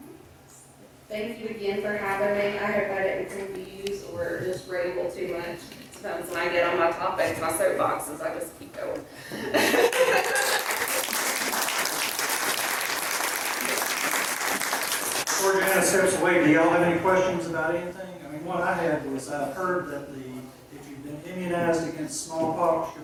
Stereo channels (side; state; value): both; identical; correlation 1.00